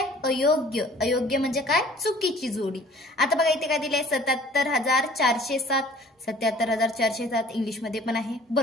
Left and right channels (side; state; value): both; normal; correlation 0.51